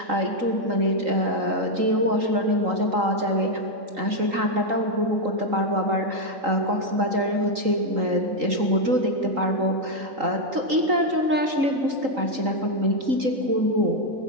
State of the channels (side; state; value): left; late; 3.8 ms